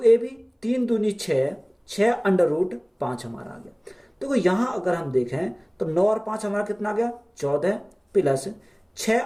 3 दूनी 6, 6√5 हमारा आ गया। देखो यहां अगर हम देखें तो 9 और 5 हमारा कितना आ गया 14 प्लस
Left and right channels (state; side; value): identical; both; correlation 1.00